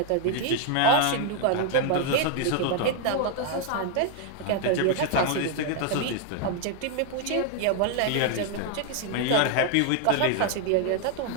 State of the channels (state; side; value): different; both; correlation 0.00